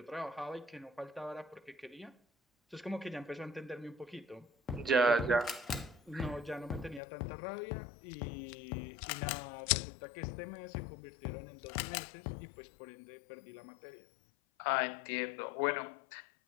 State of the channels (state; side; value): drops out; right; at 7.0 s